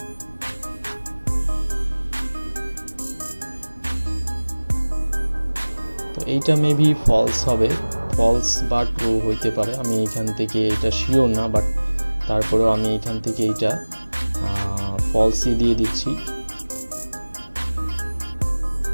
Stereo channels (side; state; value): both; inverted; correlation -1.00